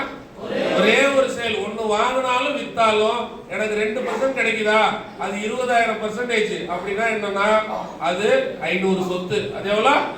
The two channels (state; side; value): identical; both; correlation 1.00